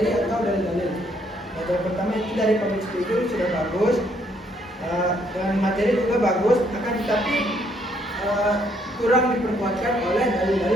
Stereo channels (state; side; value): normal; both; correlation 0.69